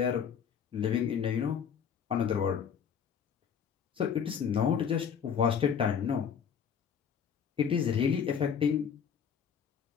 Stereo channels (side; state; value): right; quieter; 7.6 dB